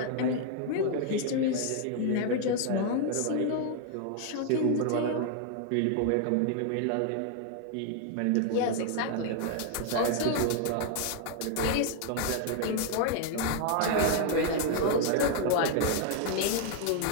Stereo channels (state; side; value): different; both; correlation 0.00